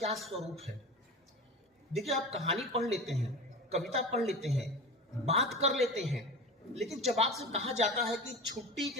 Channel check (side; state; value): both; normal; correlation 0.30